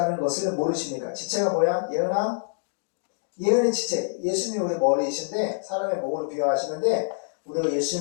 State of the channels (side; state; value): right; silent; digital silence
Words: 것을 모르십니까? 지체가 뭐야? 예언의 지체. 예수님이 우리 머리이신데 사람의 몸으로 비유하시는데 우리가